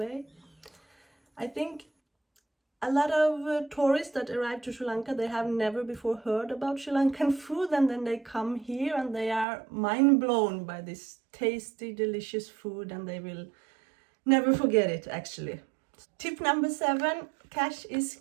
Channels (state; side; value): drops out; left; at 9.5 s